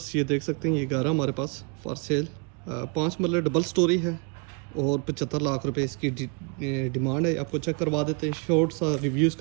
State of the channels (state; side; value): quieter; left; 32.0 dB